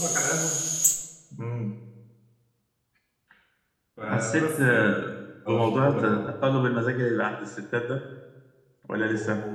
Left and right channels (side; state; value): both; identical; correlation 1.00